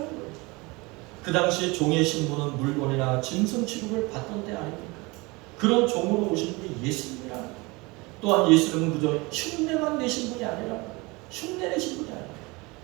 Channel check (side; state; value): left; quieter; 24.9 dB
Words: 거예요. 그 당시 종의 신분은 물건이나 짐승 취급을 받던 때 아닙니까? 그런 종으로 오신 분이 예수님이라는 거예요. 또한 예수님은 그저 흉내만 내신 분이 아니라 흉내 내신 분이 아니라